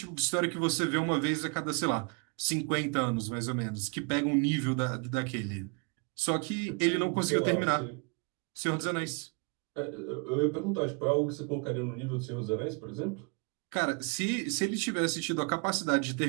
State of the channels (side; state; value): left; quieter; 34.1 dB